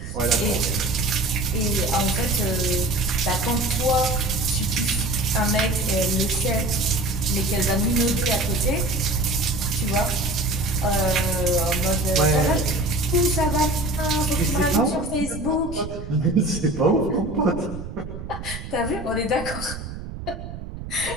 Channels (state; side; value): noise; right; rumble, 10 dB below the sound